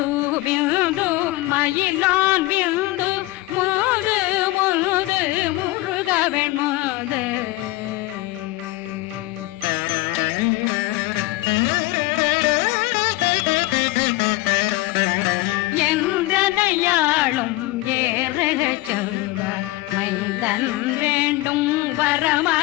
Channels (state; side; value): quieter; right; 19.3 dB